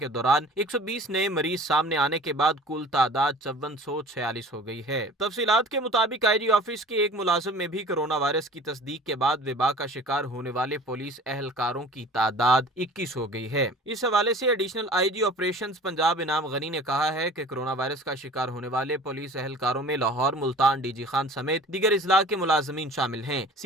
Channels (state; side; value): normal; both; correlation 0.44